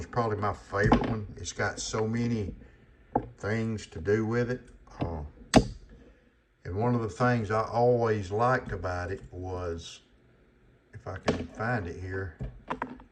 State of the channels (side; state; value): both; identical; correlation 1.00